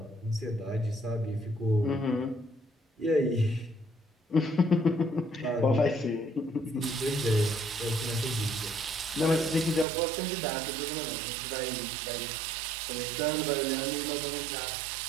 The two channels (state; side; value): drops out; left; at 9.9 s